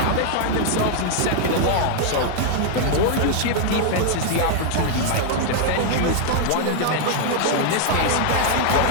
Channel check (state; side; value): different; both; correlation 0.00